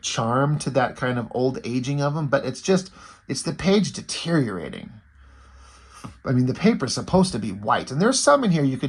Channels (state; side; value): identical; both; correlation 1.00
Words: charm to that kind of old aging of them, but it's the page deteriorating. I mean, the paper's supposed to be white, and there's some in here you